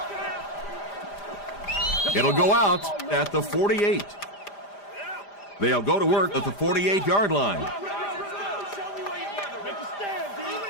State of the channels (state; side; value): late; right; 5.0 ms